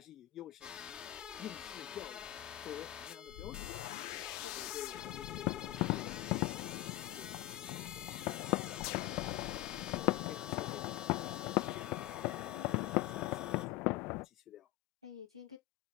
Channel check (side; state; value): right; quieter; 16.1 dB